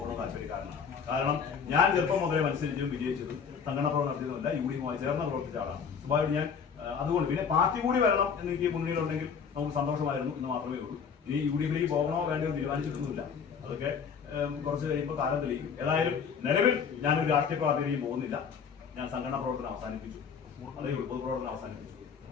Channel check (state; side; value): quieter; right; 6.5 dB